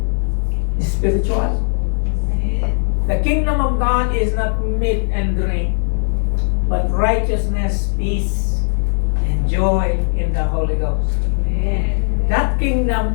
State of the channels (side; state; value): right; silent; 59 dB below the other